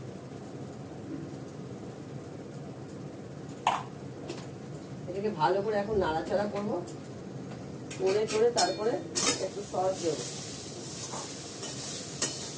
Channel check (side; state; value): both; identical; correlation 1.00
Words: এটাকে ভালো করে এখন নাড়াচাড়া করবো, করে তারপরে একটু সস দেবো।